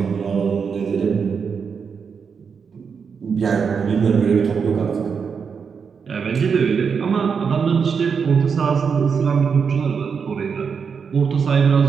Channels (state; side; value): quieter; left; 6.1 dB